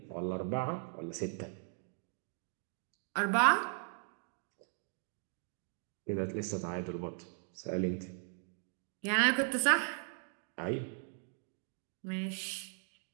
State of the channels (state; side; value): silent; left; 52 dB below the other